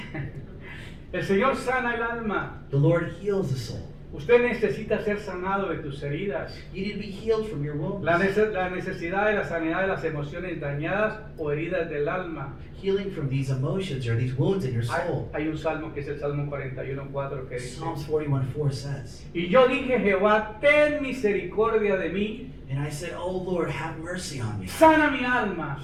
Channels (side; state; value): both; identical; correlation 1.00